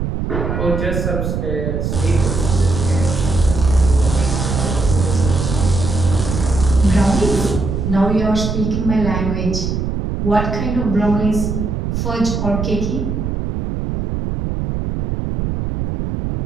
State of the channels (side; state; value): right; noise; rumble, 2 dB below the sound